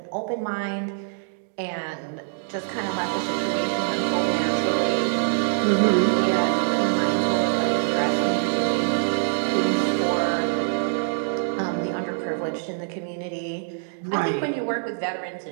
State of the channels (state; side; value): silent; left; digital silence